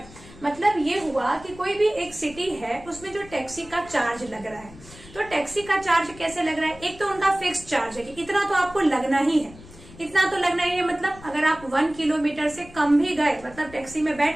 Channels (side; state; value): left; noise; rumble, 20 dB below the sound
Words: मतलब ये हुआ कि कोई भी एक सिटी है, उसमें जो टैक्सी का चार्ज लग रहा है, तो टैक्सी का चार्ज कैसे लग रहा है, एक तो उनका फिक्स्ड चार्ज है कि इतना तो आपको लगना ही है, इतना तो लगना ही है। मतलब अगर आप 1 किलोमीटर से कम भी गए, मतलब टैक्सी में